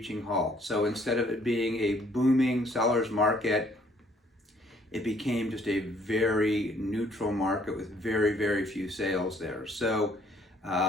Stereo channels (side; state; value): both; normal; correlation 0.63